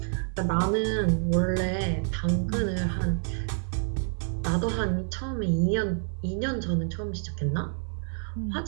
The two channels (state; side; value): silent; left; 59 dB below the other